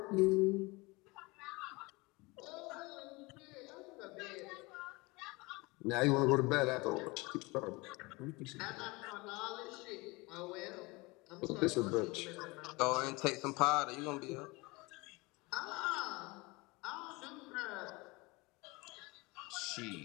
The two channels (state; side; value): quieter; right; 24.6 dB